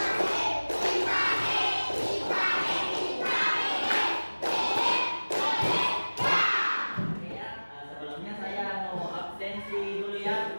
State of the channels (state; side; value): inverted; both; correlation -1.00